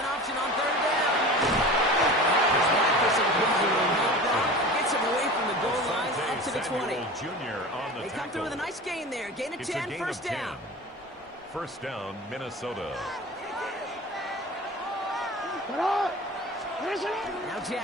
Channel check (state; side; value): normal; both; correlation 0.35